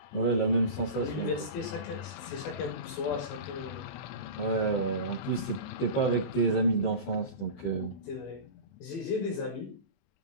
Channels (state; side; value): late; right; 20 ms